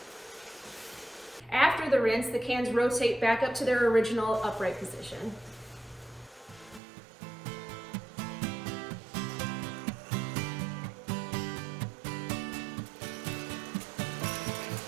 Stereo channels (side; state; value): left; drops out; at 6.8 s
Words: After the rinse, the cans rotate back up to their original upright position.